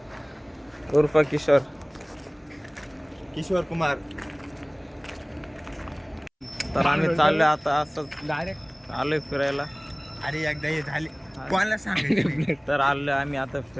उर्फ किशोर कुमार. तर आम्ही चाललोय आता असंच डायरेक्ट आलोय फिरायला. अरे एकदा हे झाले कोणाला सांगायचं. तर आलोय आम्ही आता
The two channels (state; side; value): identical; both; correlation 1.00